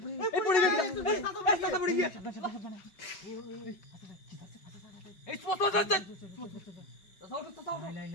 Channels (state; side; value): late; right; 5.2 ms